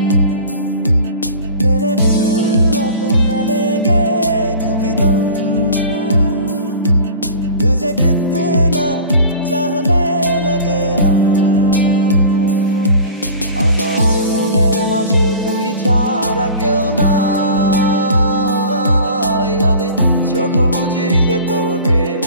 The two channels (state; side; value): inverted; both; correlation -0.41